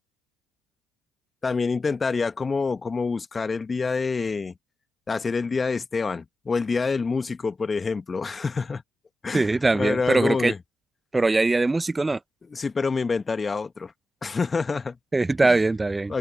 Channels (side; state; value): both; normal; correlation 0.93